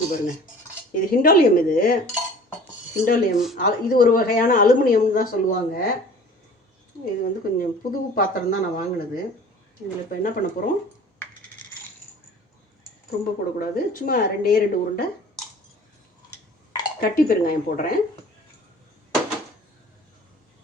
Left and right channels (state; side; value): normal; both; correlation 0.46